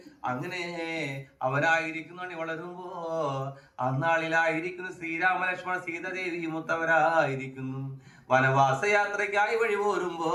അങ്ങനെ അവരായിരിക്കുന്നു അണി വളരുമ്പോ അന്നാളിലായിരിക്കുന്നു ശ്രീരാമ ലക്ഷ്മണ സീതാദേവി മുത്തവരായിരിക്കുന്നു വനവാസയാത്രയ്ക്കായി വഴി പോരുമ്പോ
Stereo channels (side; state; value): both; identical; correlation 1.00